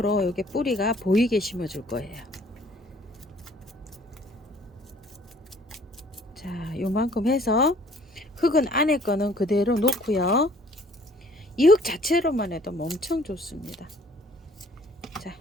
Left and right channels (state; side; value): normal; both; correlation 0.57